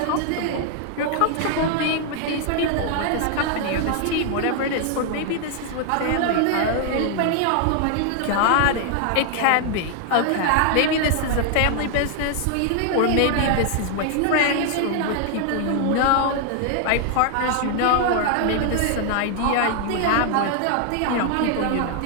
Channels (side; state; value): both; different; correlation 0.00